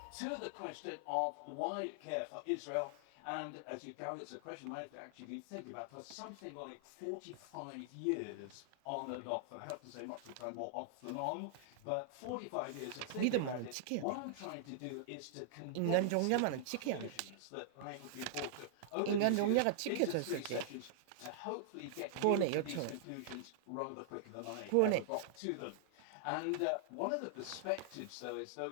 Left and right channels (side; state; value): both; different; correlation -0.01